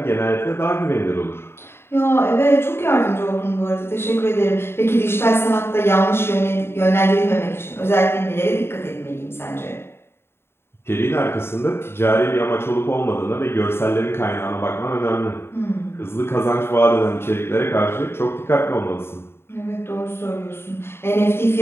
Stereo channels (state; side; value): late; right; 0.11 ms